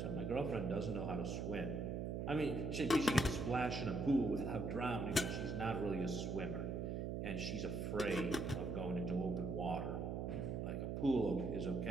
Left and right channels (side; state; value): right; noise; hum, 2 dB below the sound